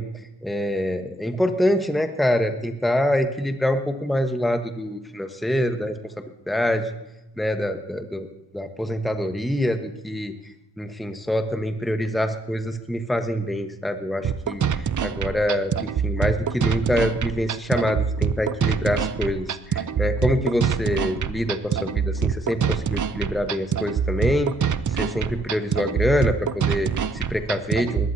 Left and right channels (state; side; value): normal; both; correlation 0.72